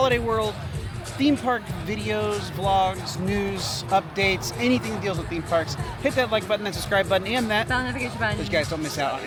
World theme park videos, vlogs, news, updates, anything that deals with theme parks, hit that like button, that subscribe button, and that Bell notification button. so you guys don't miss out on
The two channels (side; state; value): both; identical; correlation 1.00